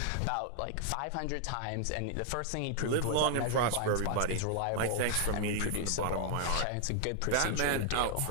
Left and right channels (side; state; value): both; different; correlation 0.00